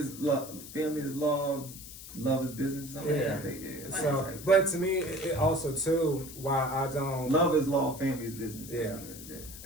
love. Family is love. Love is business. Something So, but to me, it also too why I don't. Love is law. Family is business.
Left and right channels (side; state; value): left; noise; hiss, 14 dB below the sound